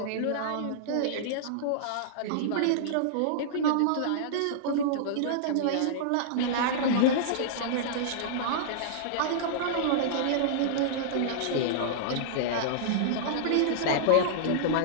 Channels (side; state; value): both; different; correlation -0.02